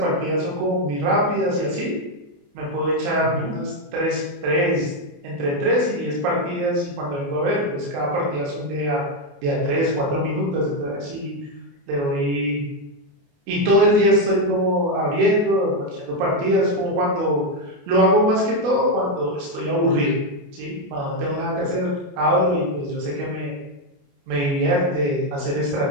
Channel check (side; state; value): left; late; 28 ms